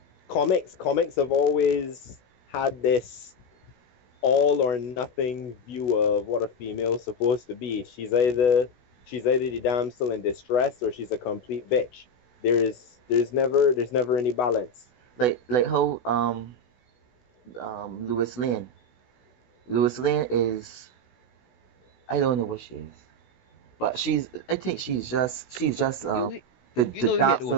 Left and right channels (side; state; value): right; late; 16 ms